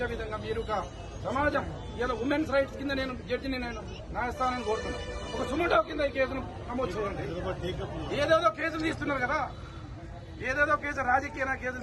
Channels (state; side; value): identical; both; correlation 1.00